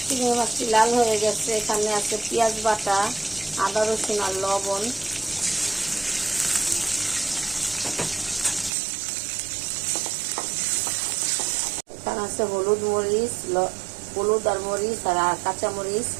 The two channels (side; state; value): left; drops out; at 8.7 s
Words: চিংড়ি মাছটি লাল হয়ে গেছে। এখানে আছে পেঁয়াজ বাটা, আদা রসুন আর লবণ। এখানে আছে হলুদ আর মরিচ আর কাঁচা মরিচ